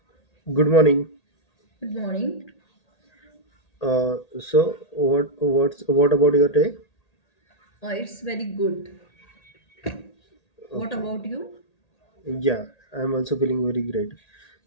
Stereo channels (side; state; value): right; late; 1.8 ms